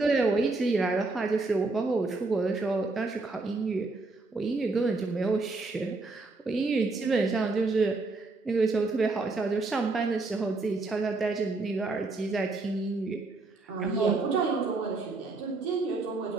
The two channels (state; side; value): quieter; left; 3.5 dB